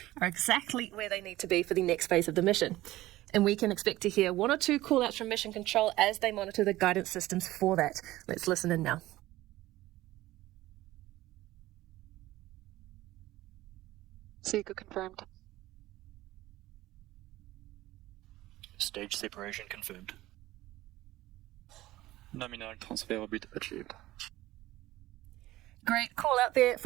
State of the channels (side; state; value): left; quieter; 16.6 dB